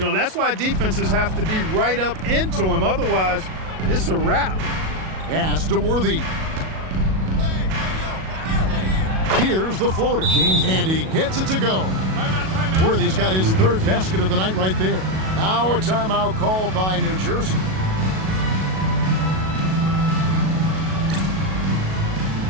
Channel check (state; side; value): late; left; 37 ms